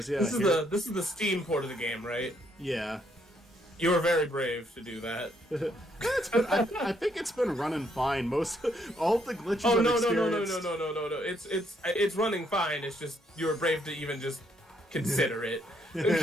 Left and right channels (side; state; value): both; normal; correlation 0.72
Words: yeah. This is the Steam port of the game, right? Yeah. You were very brave to do that. I think it's been running fine. All the glitches Oh I've no. experienced. It's running fine. It's just you were brave to even just consider it.